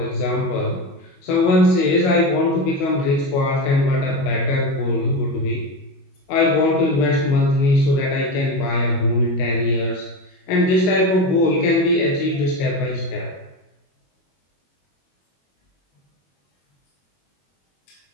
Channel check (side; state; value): right; late; 21 ms